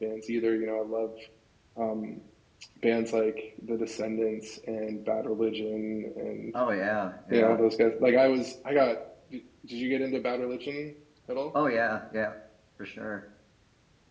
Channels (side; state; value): both; identical; correlation 1.00